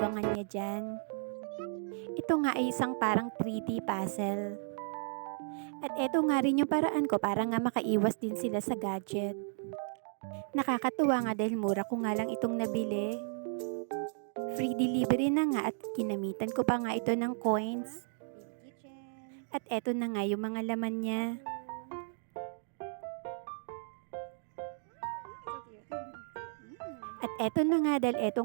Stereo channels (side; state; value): left; silent; digital silence